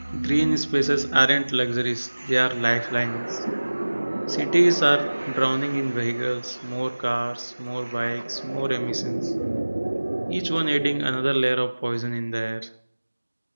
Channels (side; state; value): both; inverted; correlation -1.00